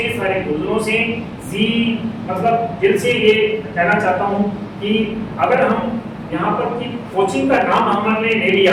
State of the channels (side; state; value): both; identical; correlation 1.00